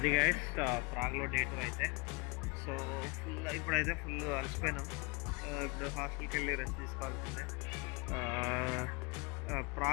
గైస్ ప్రాగ్లో డే 2 అయితే. సో ఇప్పుడైతే ఫుల్ అలసిపోయినాం. ఇప్పుడు హాస్టల్కి వెళ్ళి రెస్ట్ తీసుకోవాల్సిందే.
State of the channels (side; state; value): right; quieter; 28.9 dB